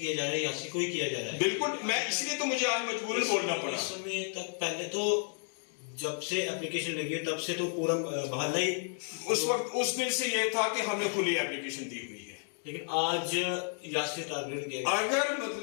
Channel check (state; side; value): silent; right; 56 dB below the other